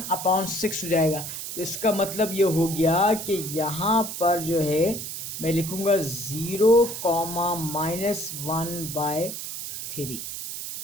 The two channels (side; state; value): right; noise; hiss, 7 dB below the sound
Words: हो जाएगा। तो इसका मतलब ये हो गया कि यहाँ पर जो है मैं लिखूँगा 0, -1/3।